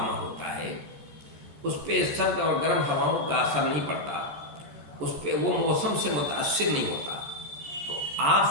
ہوتا ہے، اس پہ سرد اور گرم ہواؤں کا اثر نہیں پڑتا، اس پہ وہ موسم سے متاثر نہیں ہوتا۔ تو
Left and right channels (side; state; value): left; late; 14 ms